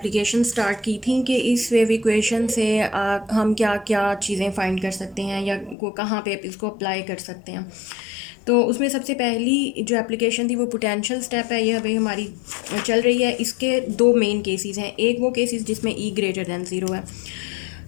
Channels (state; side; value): drops out; right; at 5.8 s